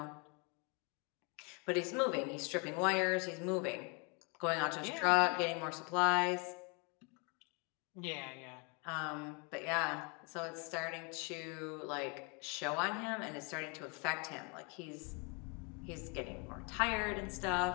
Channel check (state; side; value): quieter; right; 33.2 dB